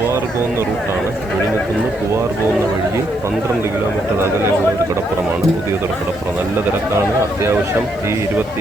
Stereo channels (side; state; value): right; noise; hiss, 30 dB below the sound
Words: പോകുന്ന റൂട്ടാണ്. വിഴിഞ്ഞത്തുനിന്ന് പൂവാർ പോകുന്ന വഴിയിൽ 12 കിലോമീറ്റർ അകലെയുള്ള ഒരു കടപ്പുറമാണ് പുതിയതുറ കടപ്പുറം. നല്ല തിരക്കാണ്. അത്യാവശ്യം ഈ